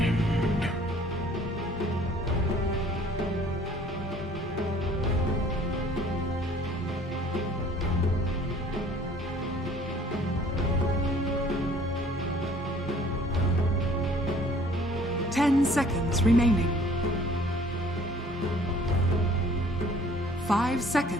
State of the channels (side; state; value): both; normal; correlation 0.55